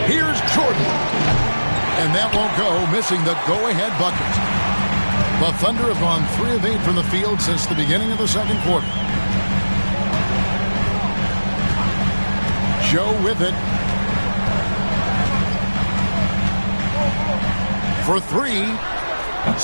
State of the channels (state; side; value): inverted; both; correlation -1.00